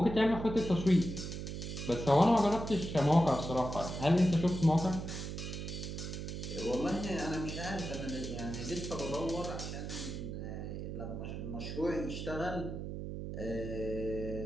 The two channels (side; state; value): right; noise; hum, 6 dB below the sound